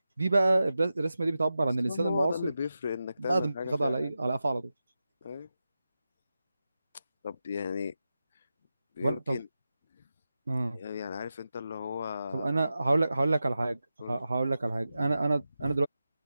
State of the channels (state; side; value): inverted; both; correlation -0.91